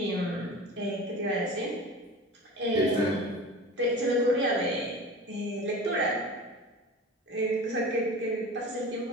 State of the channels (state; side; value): normal; both; correlation 0.35